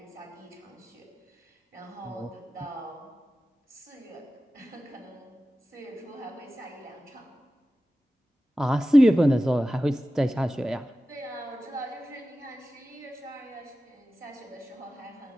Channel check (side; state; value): both; normal; correlation 0.94